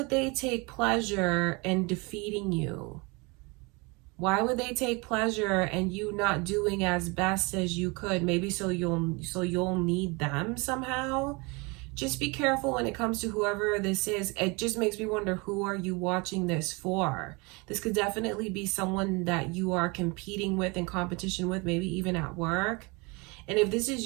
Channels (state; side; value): quieter; left; 27.9 dB